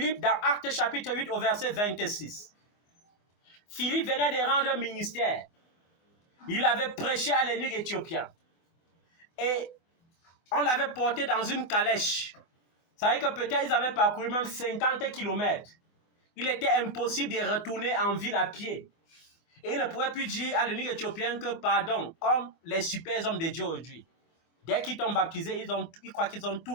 dans Actes chapitre 8 au verset 26. Philippe venait de rendre un ministère. Il avait prêché à l'eunuque éthiopien. Et on l'avait porté dans une calèche. Ça veut dire que peut-être ils avaient parcouru même 50 kilomètres. Il était impossible de retourner en ville à pied. Et il ne pouvait plus dire à l'eunuque éthiopien que pardon, comme les super hommes de Dieu aujourd'hui. Dès qu'ils t'ont baptisé, ils croient qu'ils ont tout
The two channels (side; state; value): right; late; 24 ms